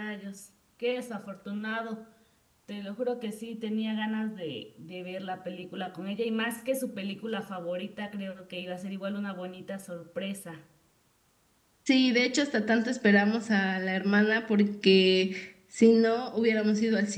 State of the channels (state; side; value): identical; both; correlation 1.00